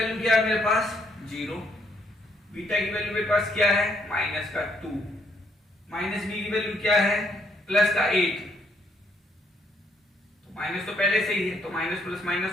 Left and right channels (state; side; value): normal; both; correlation 0.71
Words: क्या है मेरे पास 0, बीटा की वैल्यू मेरे पास क्या है माइनस का 2, माइनस बी की वैल्यू क्या है प्लस का 8, तो माइनस तो पहले से ही है तो माइनस प्लस